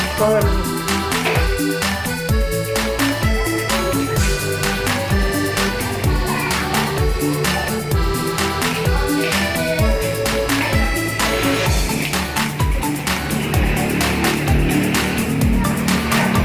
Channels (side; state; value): both; identical; correlation 1.00